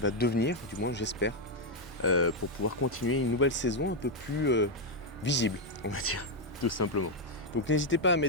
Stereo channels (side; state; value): both; normal; correlation 0.02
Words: devenir, du moins j'espère, pour pouvoir continuer une nouvelle saison un peu plus visible, on va dire, tout simplement. Donc n'hésitez pas à